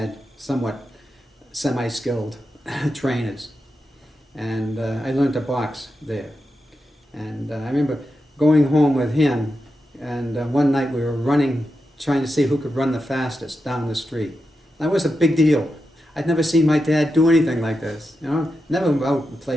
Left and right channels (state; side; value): normal; both; correlation 0.89